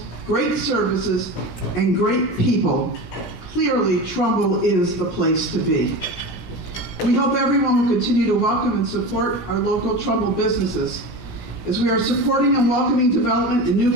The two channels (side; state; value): right; late; 17 ms